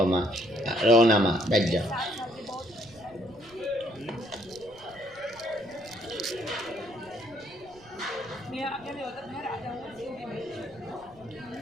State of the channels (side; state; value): right; noise; rumble, 25 dB below the sound